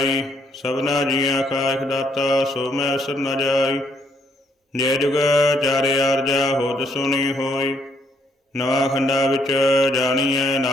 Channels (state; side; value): normal; both; correlation 0.70